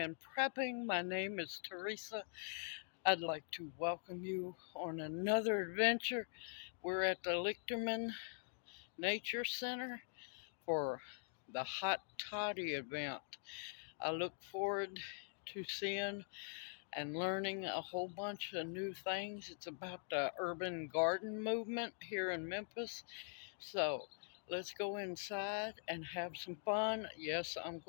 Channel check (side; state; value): right; silent; digital silence